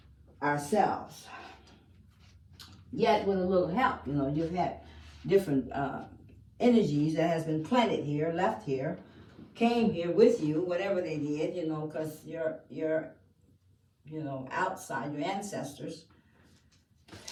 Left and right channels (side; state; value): both; identical; correlation 1.00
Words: ourselves. Yet with a little help, you know, you've had different energies that has been planted here, left here, came here with you, whatever they did, you know, because you're you know, outside, your ancestors,